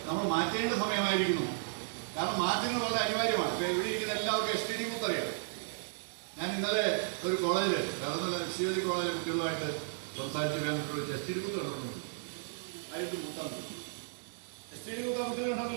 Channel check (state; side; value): silent; left; digital silence